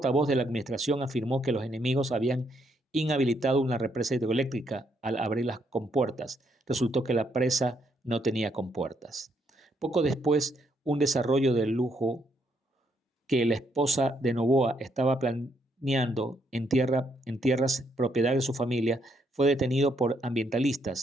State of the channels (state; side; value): normal; both; correlation 0.74